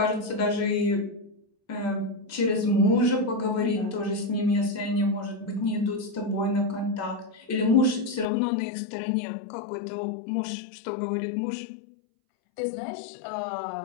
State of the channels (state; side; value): drops out; right; at 8.2 s